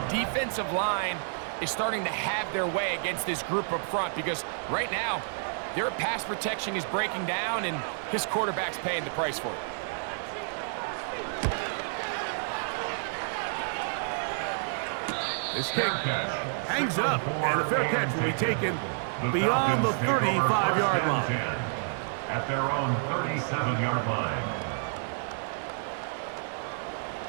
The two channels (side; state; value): left; silent; 58 dB below the other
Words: defensive line is starting to have their way against this group up front because right now, their pass protection is breaking down and his quarterback's paying the price for it. This kick hangs up, and a fair catch will be taken beyond the 35-yard line. At their own 37-yard line.